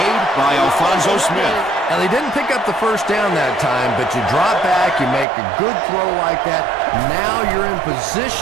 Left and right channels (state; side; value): drops out; left; at 5.2 s